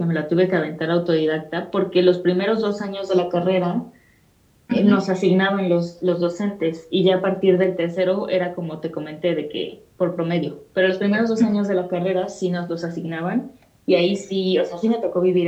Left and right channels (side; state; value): both; identical; correlation 1.00